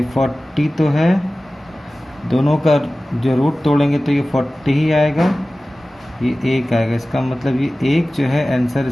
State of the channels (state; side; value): normal; both; correlation 0.97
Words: 40 तो है, दोनों का जो रूट तोड़ेंगे तो ये 40 ही आएगा, ये 1 आएगा। इसका मतलब ये 1 जो है आंसर